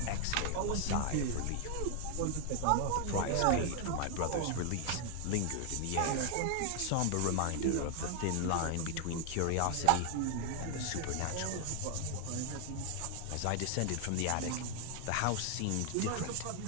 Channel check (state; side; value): different; both; correlation 0.00